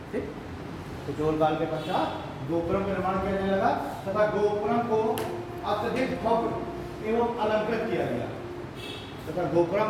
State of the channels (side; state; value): both; identical; correlation 1.00